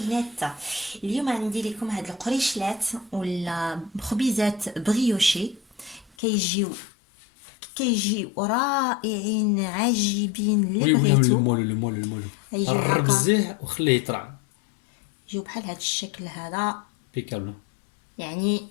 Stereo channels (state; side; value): drops out; right; at 6.1 s